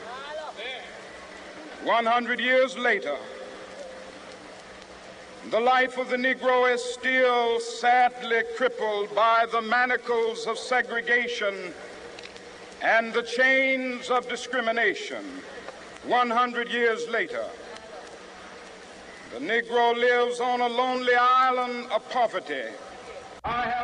100 years later, the life of the Negro is still sadly crippled by the manacles of segregation and the chains of discrimination. 100 years later, the Negro lives on a lonely island of poverty. I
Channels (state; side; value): identical; both; correlation 1.00